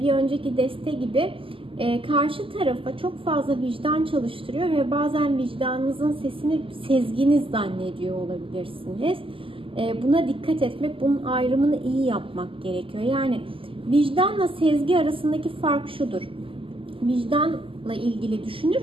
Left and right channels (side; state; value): left; late; 0.26 ms